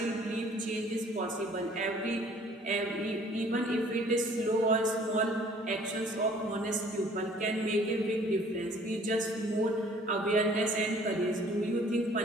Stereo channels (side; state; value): both; normal; correlation 0.55